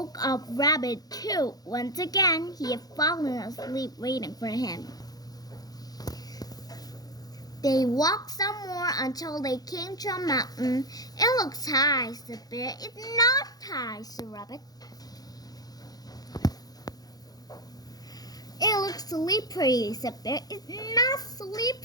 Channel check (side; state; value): right; late; 0.19 ms